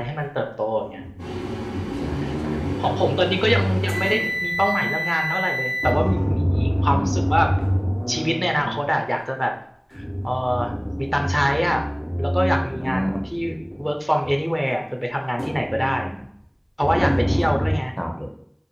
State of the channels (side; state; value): both; identical; correlation 1.00